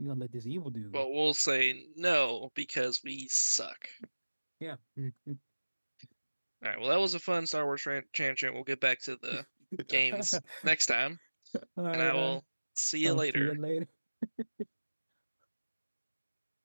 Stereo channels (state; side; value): inverted; both; correlation -1.00